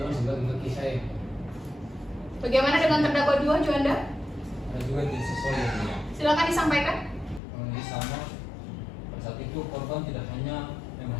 sebagai kaki saya. Bagaimana dengan terdakwa 2, Juanda? Ada juga tidak sesuai yang mulia. Silakan disampaikan. Di sana pada saat itu korban tidak hanya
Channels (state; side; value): drops out; right; at 7.4 s